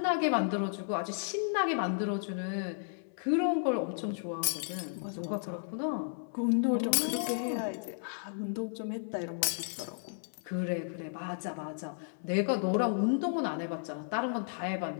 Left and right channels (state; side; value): silent; right; 55 dB below the other